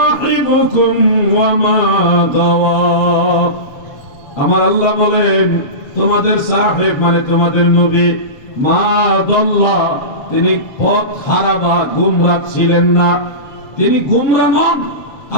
ওয়া মা গাওয়া। আমার আল্লাহ বলেন তোমাদের সাহেব মানে তোমাদের নবী, মা দাল্লা, তিনি পথ হারা বা গুমরাহ ছিলেন না, তিনি গুমরাহ নন।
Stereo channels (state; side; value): late; right; 7.7 ms